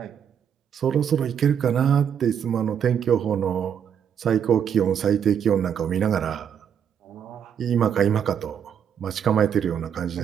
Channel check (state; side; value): quieter; left; 8.3 dB